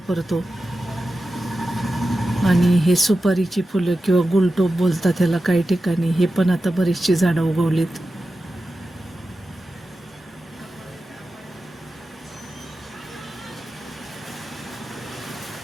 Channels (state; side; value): normal; both; correlation 0.92